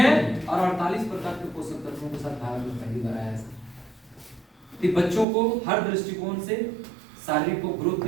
और 48 प्रकार के पोषक तत्वों के साथ भारत में पहली बार आया है सर। तो बच्चों को हर दृष्टिकोण से शारीरिक को ग्रोथ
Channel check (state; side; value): drops out; left; at 5.2 s